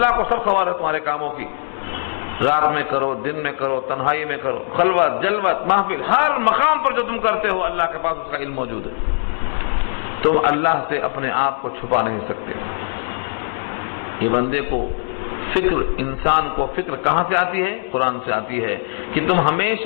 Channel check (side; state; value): right; silent; digital silence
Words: کو سب خبر ہے تمہارے کاموں کی، رات میں کرو، دن میں کرو، تنہائی میں کرو، خلوت جلوت محفل، ہر مقام پر جو تم کرتے ہو اللہ کے پاس اس کا علم موجود ہے۔ تم اللہ سے اپنے آپ کو چھپا نہیں سکتے۔ یہ بندے کو فکر، انسان کو فکر کہاں سے آتی ہے؟ قرآن سے آتی ہے کہ تم